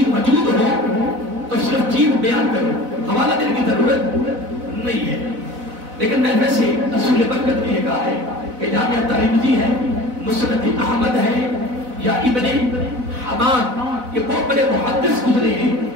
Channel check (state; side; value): late; left; 4.0 ms